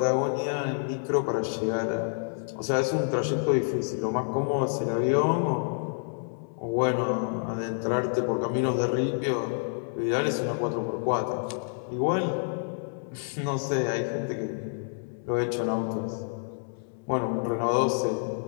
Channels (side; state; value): right; silent; 59 dB below the other